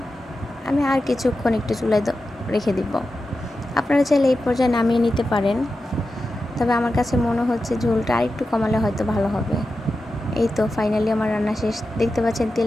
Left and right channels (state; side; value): normal; both; correlation 0.91